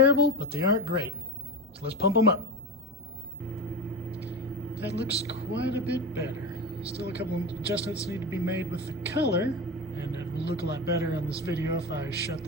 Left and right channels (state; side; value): normal; both; correlation 0.23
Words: but they aren't great, so let's pump them up. That looks quite a bit better. Still a couple of adjustments need to be made with the color, and it will look a lot better on this video if I shut